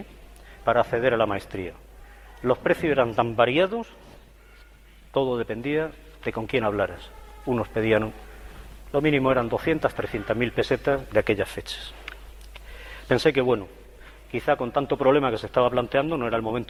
para acceder a la maestría. Los precios eran tan variados, todo dependía de con quién hablaras. Unos pedían, lo mínimo eran 200, 300.000 pesetas de aquellas fechas. Pensé que bueno, quizá con tanto problema que se estaba planteando no era el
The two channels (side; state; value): both; identical; correlation 1.00